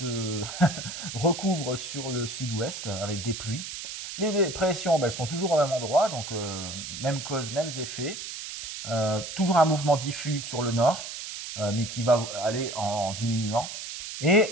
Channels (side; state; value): right; noise; hiss, 8 dB below the sound